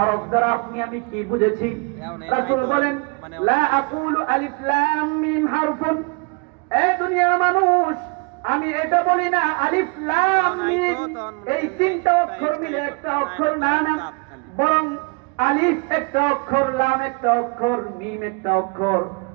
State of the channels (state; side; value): quieter; left; 31.7 dB